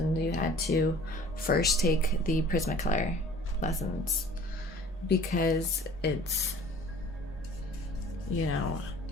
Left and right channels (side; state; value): both; normal; correlation 0.48